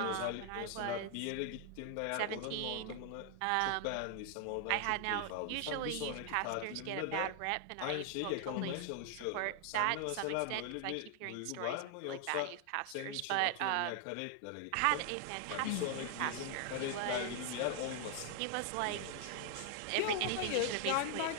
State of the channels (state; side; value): different; both; correlation 0.00